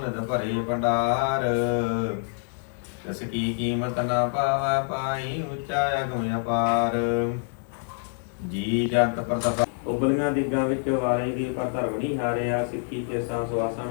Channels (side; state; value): right; silent; 56 dB below the other